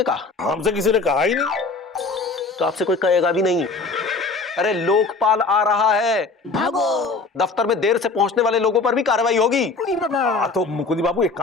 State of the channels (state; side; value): quieter; right; 4.0 dB